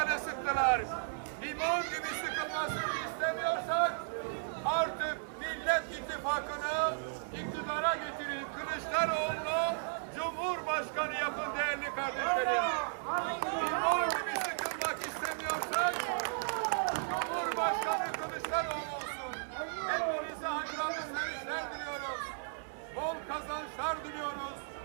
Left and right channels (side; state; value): left; silent; digital silence